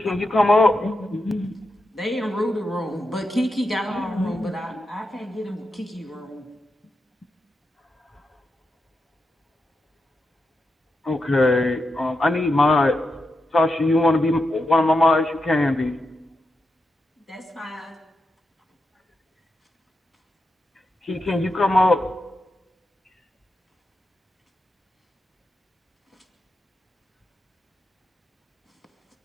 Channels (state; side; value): normal; both; correlation 0.87